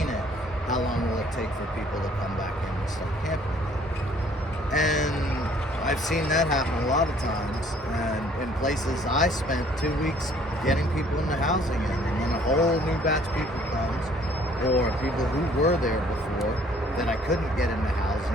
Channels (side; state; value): both; normal; correlation 0.59